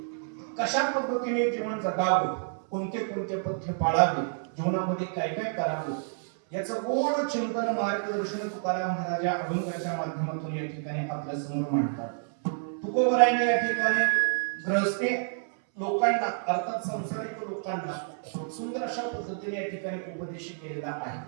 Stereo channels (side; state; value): left; silent; 59 dB below the other